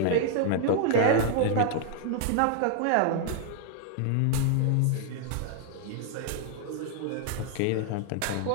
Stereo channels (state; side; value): different; both; correlation 0.00